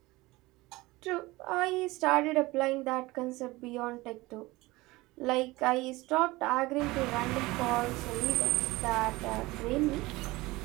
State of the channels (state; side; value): quieter; left; 20.7 dB